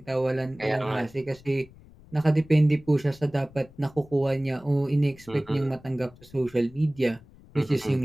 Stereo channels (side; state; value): left; noise; rumble, 24 dB below the sound